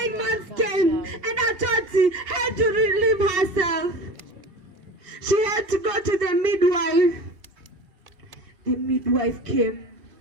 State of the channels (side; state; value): left; late; 2.8 ms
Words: months came and Atoti had to relieve herself. She had to go to the midwife. The midwife came